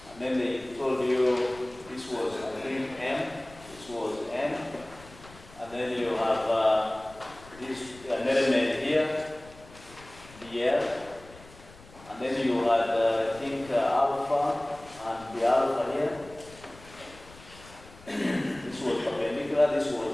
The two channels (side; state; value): left; noise; rumble, 21 dB below the sound